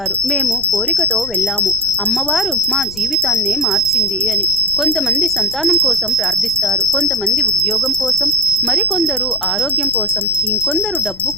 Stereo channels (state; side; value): noise; left; rumble, 19 dB below the sound